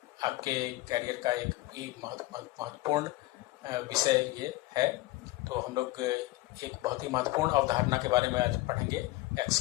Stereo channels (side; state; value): right; quieter; 19.1 dB